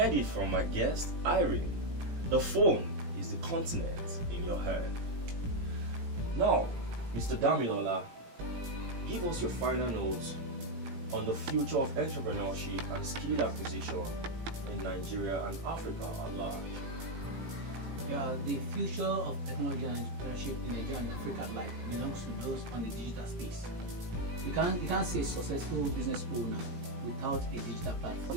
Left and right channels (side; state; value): left; late; 18 ms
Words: it from my guest, Irene. The phone is the continent in your hand. Now, Mr. Damilola, give us your final notes on the future of entrepreneurship and skill acquisition in Nigeria and Africa at large. Yeah, the future of technology and entrepreneurship in Nigeria and Africa at large belongs to those on the digital space. You can't say successful business owner without a digital